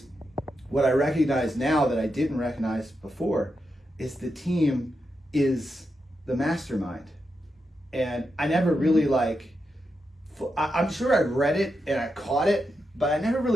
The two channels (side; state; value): both; normal; correlation 0.86